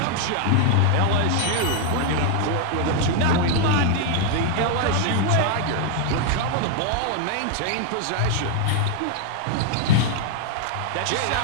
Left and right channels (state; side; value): different; both; correlation 0.00